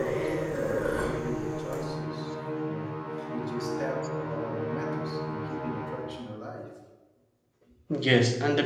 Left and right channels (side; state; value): both; identical; correlation 1.00